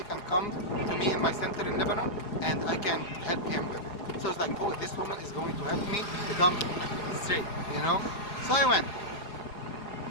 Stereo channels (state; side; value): late; right; 4.8 ms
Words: can come to me in my center in Lebanon, and I can help him with it. So I was like, oh, this woman is going to help me become straight, you know? So I went.